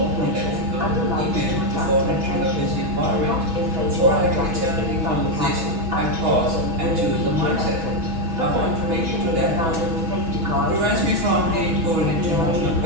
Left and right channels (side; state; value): left; late; 6.2 ms